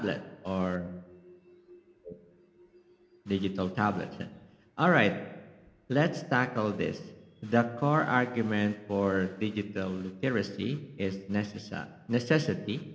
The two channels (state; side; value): identical; both; correlation 1.00